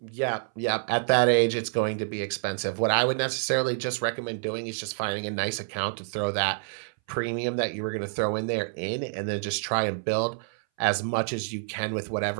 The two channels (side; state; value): left; silent; 60 dB below the other